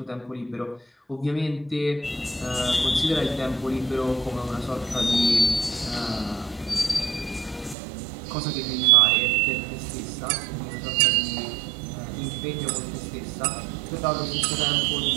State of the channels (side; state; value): left; drops out; at 7.8 s